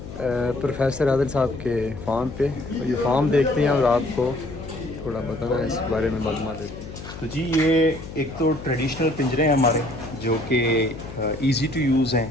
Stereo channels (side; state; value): left; noise; hum, 12 dB below the sound